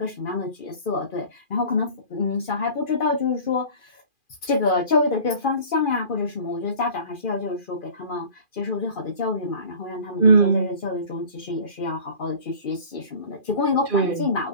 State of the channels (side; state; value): right; late; 2.4 ms